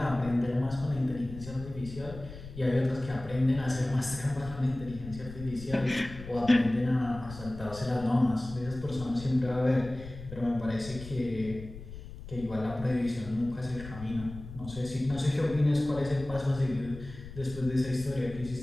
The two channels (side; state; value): left; noise; rumble, 13 dB below the sound